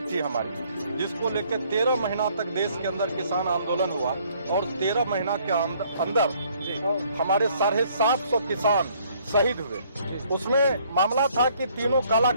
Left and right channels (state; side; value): inverted; both; correlation -0.63